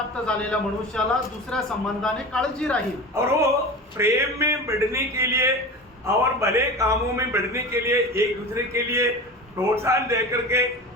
झालेल्या मनुष्याला दुसऱ्या संबंधाने काळजी राहील। और वो प्रेम में बढ़ने के लिए और भले कामों में बढ़ने के लिए एक दूसरे के लिए प्रोत्साहन दे करके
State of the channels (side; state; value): both; normal; correlation 0.31